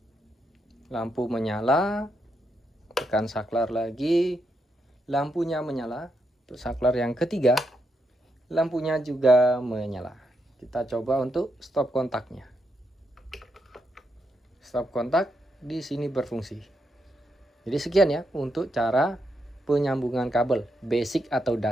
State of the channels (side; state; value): both; normal; correlation 0.81